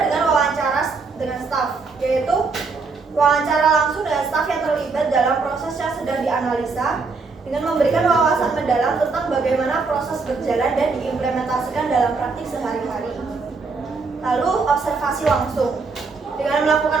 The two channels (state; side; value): quieter; left; 4.4 dB